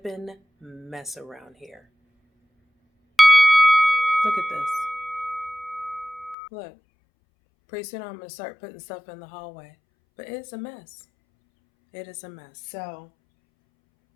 mess around here. Look at this. Look, pretty soon I'm gonna start putting stuff in the hallway. But it's a mess. It is a mess. So,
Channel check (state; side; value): drops out; right; at 6.4 s